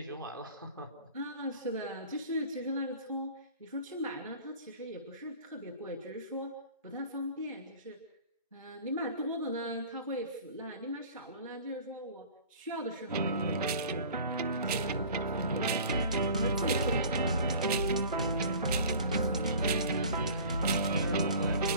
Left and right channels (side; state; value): both; inverted; correlation -0.45